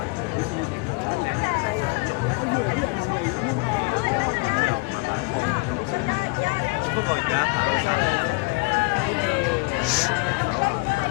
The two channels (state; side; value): quieter; right; 28.1 dB